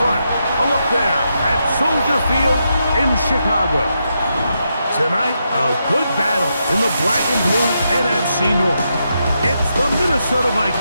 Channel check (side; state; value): both; inverted; correlation -0.83